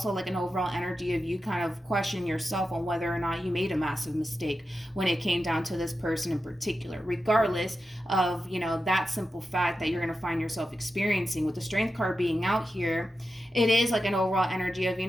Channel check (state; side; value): normal; both; correlation 0.90